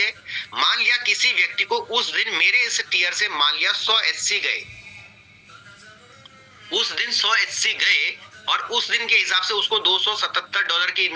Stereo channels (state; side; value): identical; both; correlation 1.00